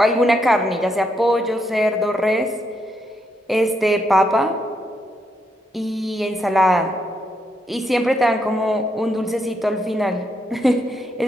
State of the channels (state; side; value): normal; both; correlation 0.78